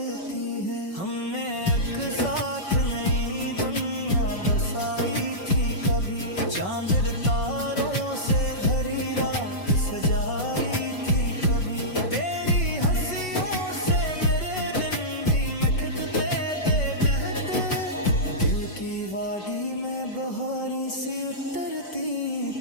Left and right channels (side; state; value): right; late; 5.3 ms